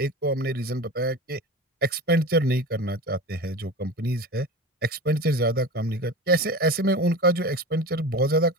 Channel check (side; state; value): both; normal; correlation 0.31